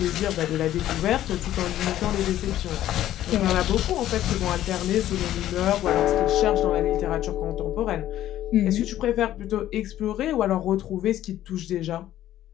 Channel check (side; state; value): right; quieter; 12.9 dB